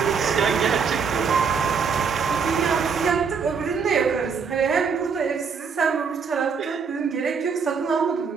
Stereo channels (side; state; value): left; quieter; 5.9 dB